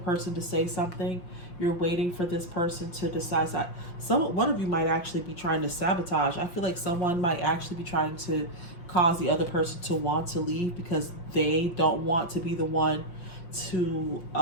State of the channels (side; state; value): right; late; 5.7 ms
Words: to say something. You're waiting for this person to decide. One of you might actually be trying to sabotage. I feel like someone might actually be trying to cause the other person to want to leave because they don't want to be the one to